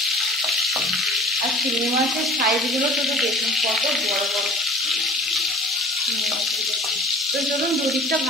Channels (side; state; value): both; normal; correlation 0.44